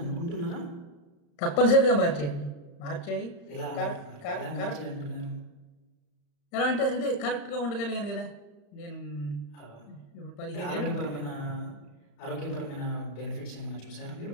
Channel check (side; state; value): right; late; 35 ms